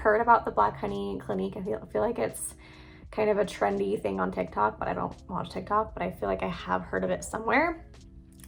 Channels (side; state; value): both; identical; correlation 1.00